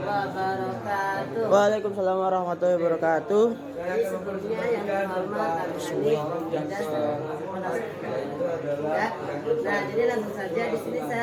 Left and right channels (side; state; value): both; identical; correlation 1.00